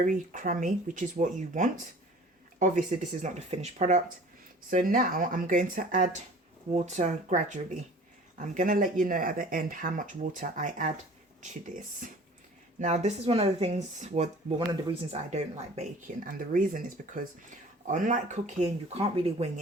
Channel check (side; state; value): both; normal; correlation 0.46